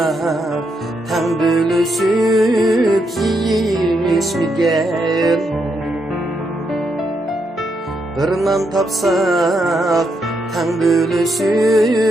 tan bölüşüp yiyişmigen bir nan tapsak tan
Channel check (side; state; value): both; normal; correlation 0.79